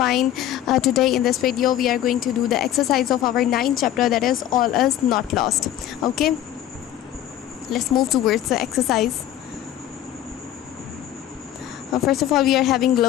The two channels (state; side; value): quieter; right; 12.1 dB